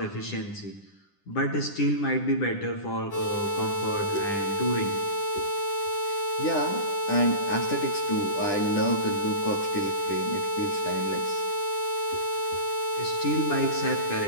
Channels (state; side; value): late; right; 10 ms